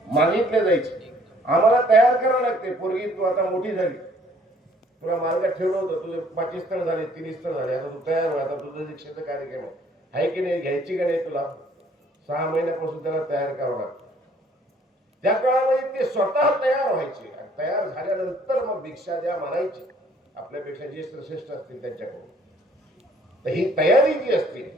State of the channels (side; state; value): both; normal; correlation 0.60